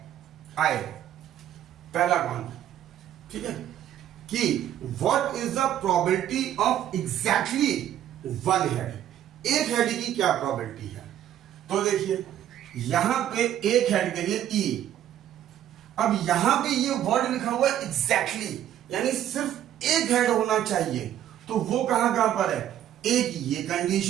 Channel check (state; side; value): quieter; left; 11.3 dB